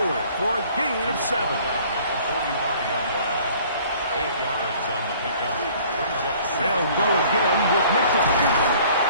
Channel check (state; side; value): inverted; both; correlation -0.54